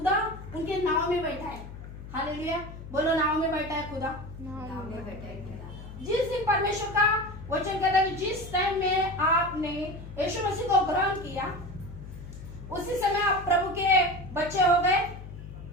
उनके नाव में बैठा है। हालेलुया, बोलो नाव में बैठा है खुदा। जिस दिन परमेश्वर का वचन कहता है जिस टाइम में आपने यीशु मसीह को ग्रहण किया, उसी समय आप प्रभु के बच्चे हो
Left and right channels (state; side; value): noise; left; hum, 13 dB below the sound